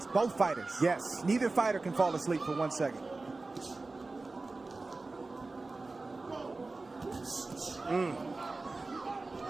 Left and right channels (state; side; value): quieter; left; 3.5 dB